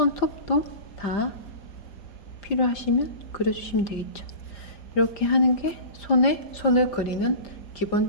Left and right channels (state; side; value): late; right; 5.0 ms